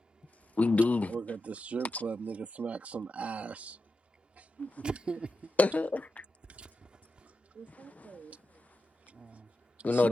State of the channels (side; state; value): both; normal; correlation 0.89